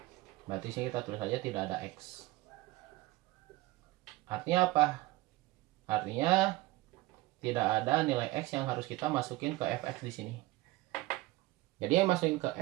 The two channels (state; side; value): quieter; left; 19.1 dB